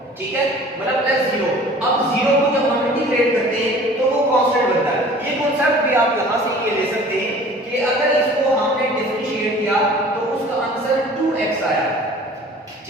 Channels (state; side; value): normal; both; correlation 0.47